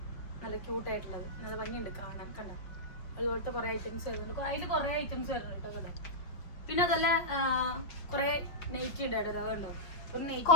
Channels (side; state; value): right; late; 5.2 ms